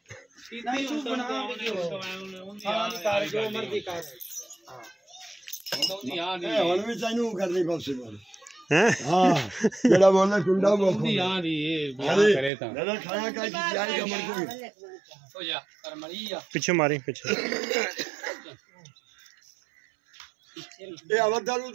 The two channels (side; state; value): left; drops out; at 12.5 s